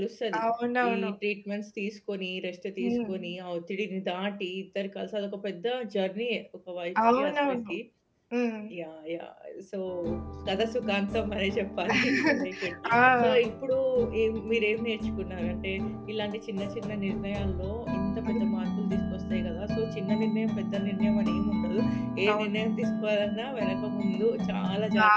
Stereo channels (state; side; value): identical; both; correlation 1.00